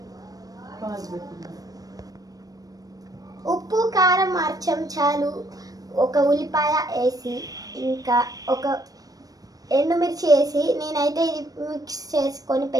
ఉప్పు, కారం, చెంచాలు, ఒక ఉల్లిపాయ వేసి, ఇంకా ఒక ఎండుమిర్చి వేసి నేనైతే ఇది మిక్స్ చేసుకొని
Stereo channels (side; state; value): left; late; 0.18 ms